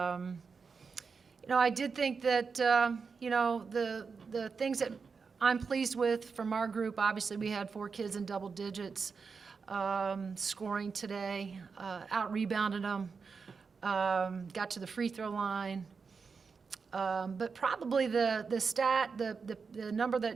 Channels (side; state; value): left; quieter; 5.2 dB